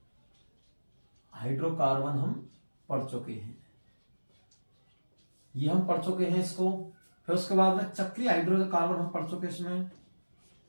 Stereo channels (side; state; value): both; inverted; correlation -1.00